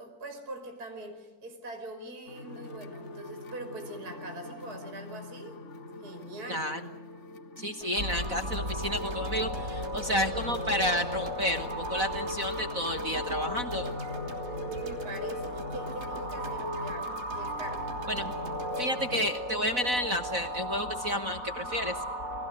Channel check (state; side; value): late; left; 4.0 ms